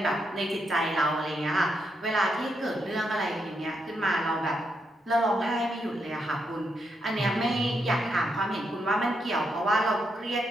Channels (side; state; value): both; normal; correlation 0.80